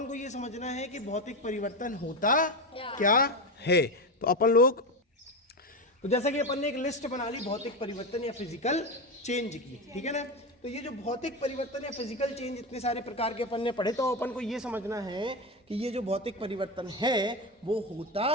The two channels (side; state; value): both; normal; correlation 0.16